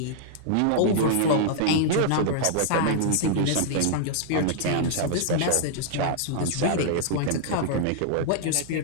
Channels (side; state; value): both; different; correlation -0.01